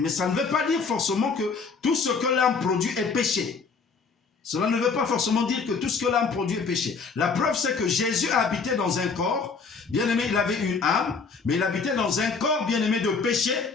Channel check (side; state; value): right; quieter; 5.0 dB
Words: ça ne veut pas dire forcément que tout ce que l'âme produit est péché. Cela ne veut pas forcément dire que tout ce que l'âme produit est péché. La preuve, c'est que Jésus a habité dans un corps. Bien-aimé, il avait une âme, mais il habitait dans un corps, bien-aimé, de péché,